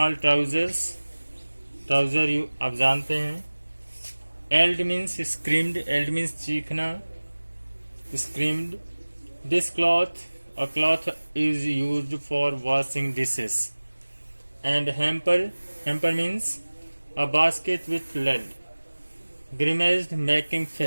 trousers, trouser you आप जानते हैं. Eld means screamed, eld means चीखना, screamed. This cloth, a cloth is used for washing dishes. And hamper means a basket with lid. Grimaced, making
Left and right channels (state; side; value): inverted; both; correlation -1.00